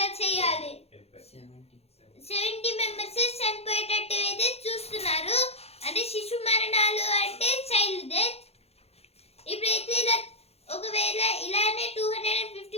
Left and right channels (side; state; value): right; late; 0.30 ms